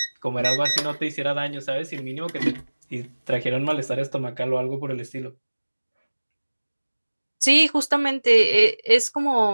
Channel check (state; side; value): inverted; both; correlation -1.00